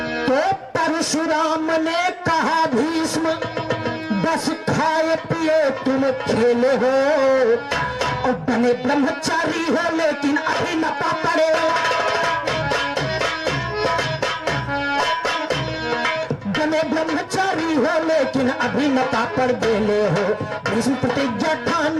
तो परशुराम ने कहा भीष्म बस खाए पिए तुम खेले हो, और बने ब्रह्मचारी हो लेकिन अभी न पड़े। बने ब्रह्मचारी हो लेकिन अभी न पड़ बेले हो, भीष्म प्रतिज्ञा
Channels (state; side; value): identical; both; correlation 1.00